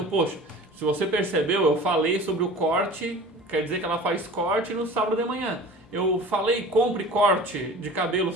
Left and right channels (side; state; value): both; normal; correlation 0.41